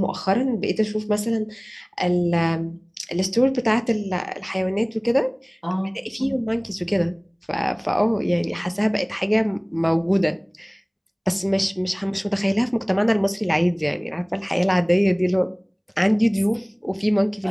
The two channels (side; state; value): both; identical; correlation 1.00